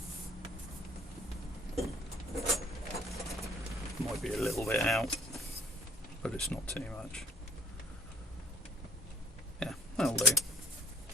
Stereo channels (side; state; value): both; normal; correlation 0.54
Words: Might be a little bit out, but it's not too much. Yeah, that'll do.